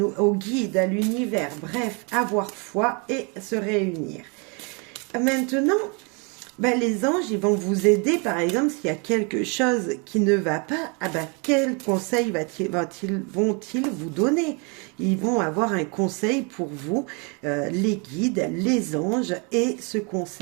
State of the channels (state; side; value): quieter; left; 33.1 dB